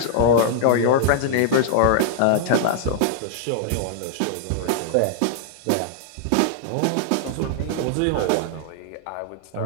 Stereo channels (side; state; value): both; different; correlation -0.01